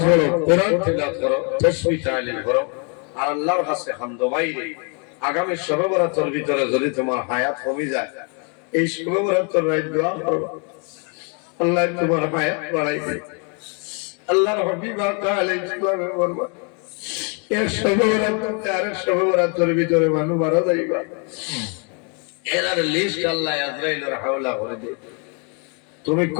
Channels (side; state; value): right; quieter; 37.0 dB